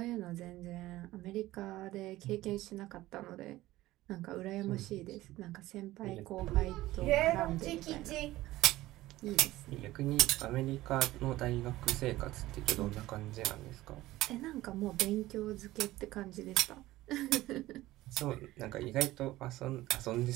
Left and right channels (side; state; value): left; quieter; 16.9 dB